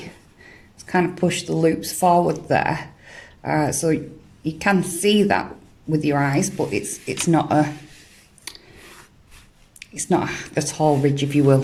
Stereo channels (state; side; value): identical; both; correlation 1.00